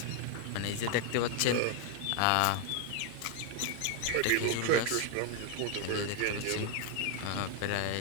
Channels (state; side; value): different; both; correlation 0.01